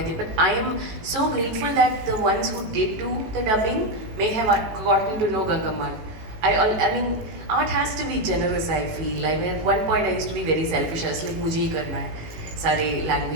it, but I am so grateful that the ones who did do the dubbing may have gotten to know Gangamman. I mean, art has to be generous, I feel. I mean, at one point I used to be very selfish. I was like, mujhe hi karna hai, sare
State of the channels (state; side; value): late; left; 18 ms